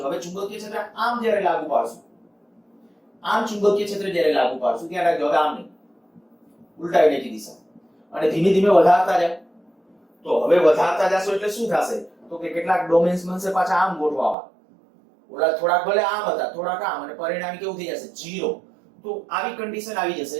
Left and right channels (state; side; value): drops out; left; at 14.4 s